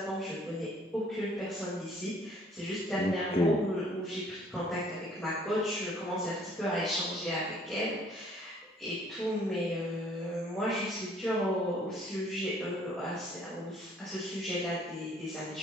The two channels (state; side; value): normal; both; correlation 0.59